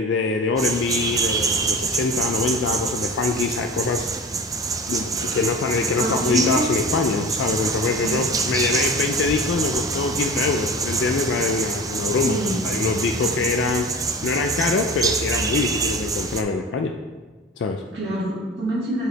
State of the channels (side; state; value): both; normal; correlation 0.35